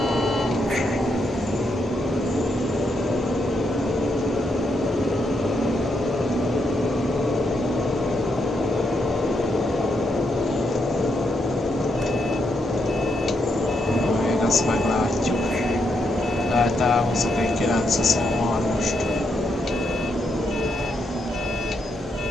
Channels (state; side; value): normal; both; correlation 0.79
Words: Ezt meglátjuk. Lehet elhozok egy 923-ost.